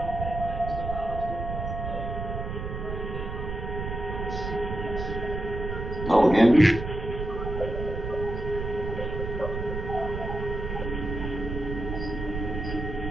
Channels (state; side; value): noise; right; rumble, 5 dB below the sound